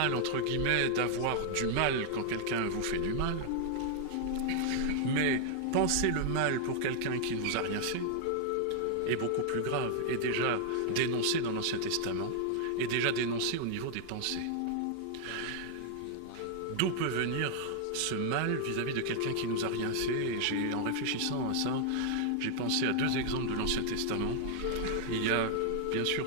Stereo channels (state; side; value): different; both; correlation 0.00